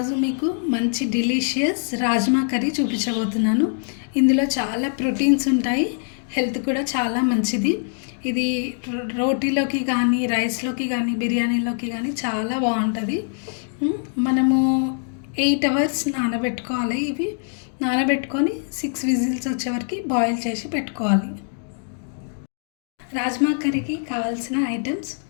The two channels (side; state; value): right; silent; 60 dB below the other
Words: మీకు మంచి డిలీషియస్ రాజ్మా కర్రీ చూపించబోతున్నాను. ఇందులో చాలా ప్రోటీన్స్ ఉంటాయి, హెల్త్ కూడా చాలా మంచిది. ఇది రోటీలోకి కానీ, రైస్లోకి కానీ, బిర్యానీలోకి కానీ చాలా బాగుంటుంది. మనము 8 hours నానబెట్టుకోవాలి. ఇవి నానబెట్టుకొని 6 విజిల్స్ వచ్చే వరకు బాయిల్ చేసి పెట్టుకోవాలి. రాజ్మా కర్రీకి కావాల్సిన ఐటమ్స్: